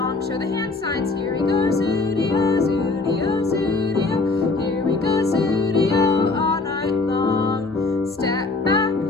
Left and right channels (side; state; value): right; quieter; 3.5 dB